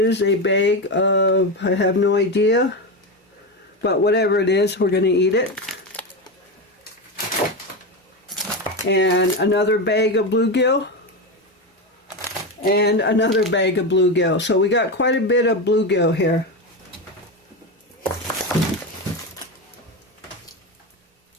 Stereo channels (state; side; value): normal; both; correlation 0.16